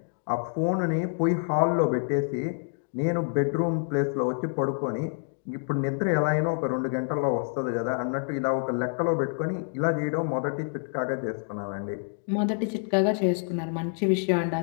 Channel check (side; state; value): right; silent; 59 dB below the other